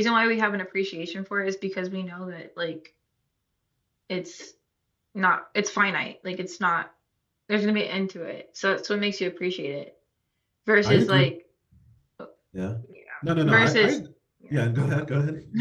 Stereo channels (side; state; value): both; identical; correlation 1.00